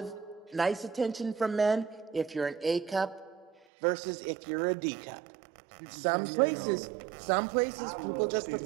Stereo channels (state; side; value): drops out; left; at 3.6 s